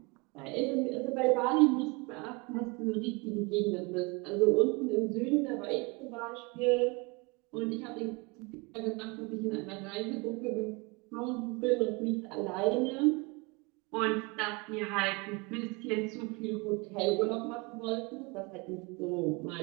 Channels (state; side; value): quieter; left; 27.7 dB